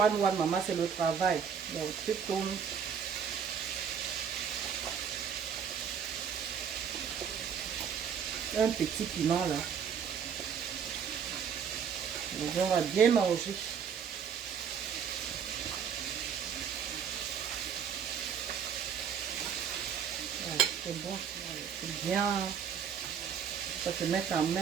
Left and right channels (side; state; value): left; quieter; 7.4 dB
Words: maman, c'est le travail. Donc, tu tournes. Un petit piment là. Donc, on va bien manger. C'est bon, c'est bien. Ça te met en